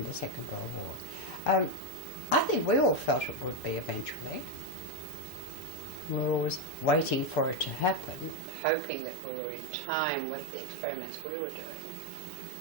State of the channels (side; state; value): left; drops out; at 8.4 s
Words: the Second World War. I think we all felt it would be eventually. We were always waiting for it to happen and hoping that we were in time with the experiments we were doing.